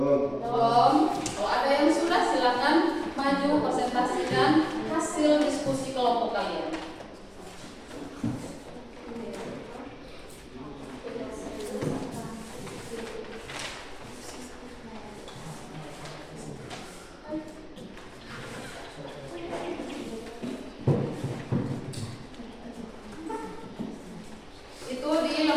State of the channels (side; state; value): both; identical; correlation 1.00